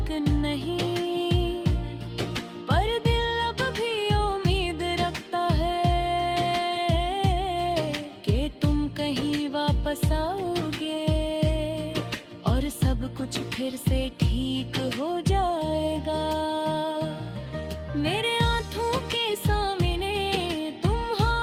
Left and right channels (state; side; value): identical; both; correlation 1.00